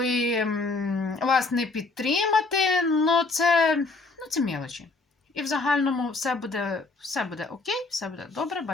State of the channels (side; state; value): right; quieter; 3.5 dB